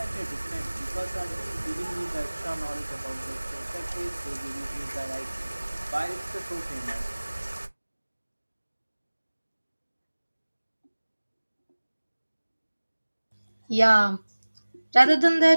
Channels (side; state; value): both; inverted; correlation -1.00